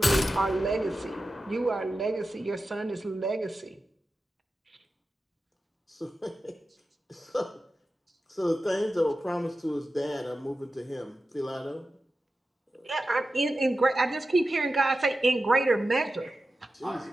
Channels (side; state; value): both; normal; correlation 0.92